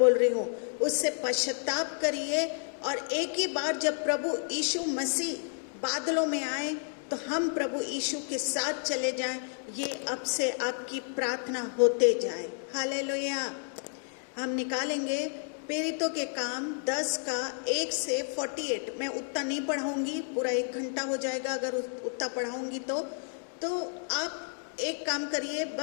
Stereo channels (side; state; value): right; silent; 57 dB below the other